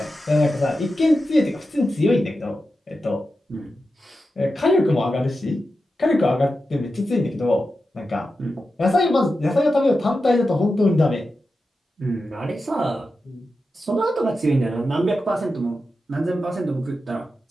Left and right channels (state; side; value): normal; both; correlation 0.90